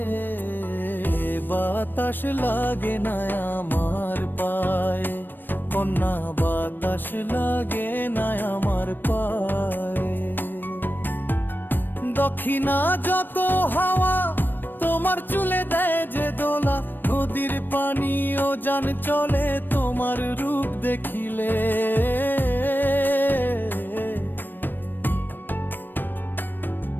বাতাস লাগে না আমার পায়ে, কন্যা বাতাস লাগে না আমার পায়ে। দক্ষিণা যত হাওয়া তোমার চুলে দেয় যে দোলা, নদীর পানি ও জান চলে তোমার রূপ দেখিলে।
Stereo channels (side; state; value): right; late; 0.093 ms